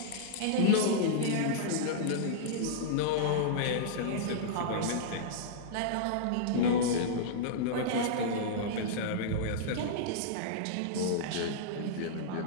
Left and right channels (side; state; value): both; different; correlation -0.02